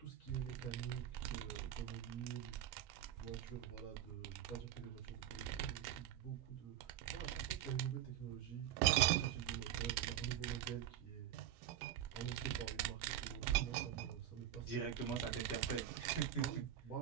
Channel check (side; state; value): left; quieter; 11.2 dB